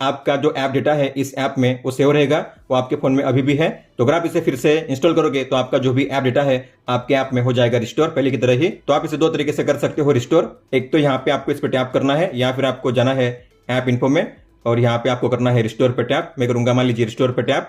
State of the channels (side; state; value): both; identical; correlation 1.00